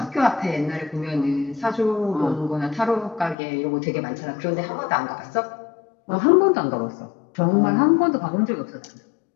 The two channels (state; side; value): drops out; right; at 3.4 s